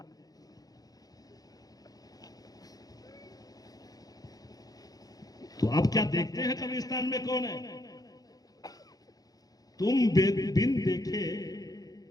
तो आप क्या देखते हैं कब्रिस्तान में कौन है? तुम बिन देखे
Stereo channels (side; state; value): right; late; 0.18 ms